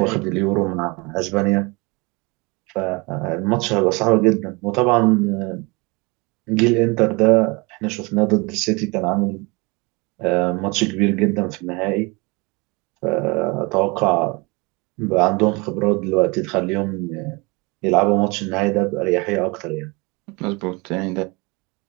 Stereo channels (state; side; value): quieter; left; 27.3 dB